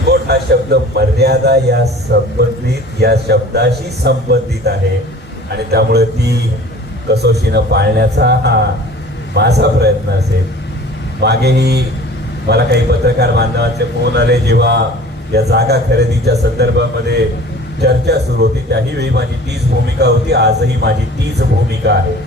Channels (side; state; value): both; normal; correlation 0.44